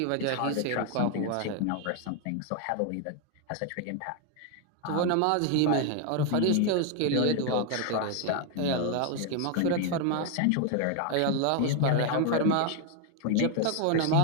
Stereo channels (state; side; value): different; both; correlation 0.01